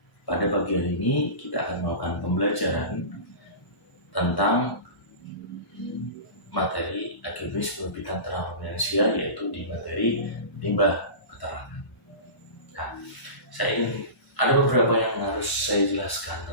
pada pagi hari ini kita akan melakukan pembelajaran tentang materi agribisnis penerbitan ternak ruminansia, yaitu di materi limbah peternakan. Nah, saya ingin ada beberapa yang harus saya jelaskan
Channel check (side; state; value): right; late; 1.1 ms